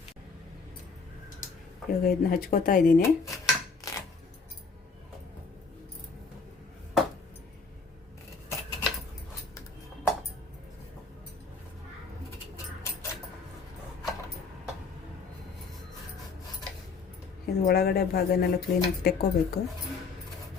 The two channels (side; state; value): right; quieter; 4.6 dB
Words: ಇವಾಗ ಇದನ್ನ ಹಚ್ಕೋತಾ ಇದ್ದೀನಿ. ಇದು ಒಳಗಡೆ ಭಾಗನೆಲ್ಲ ಕ್ಲೀನಾಗಿ ತೆಕ್ಕೋಬೇಕು.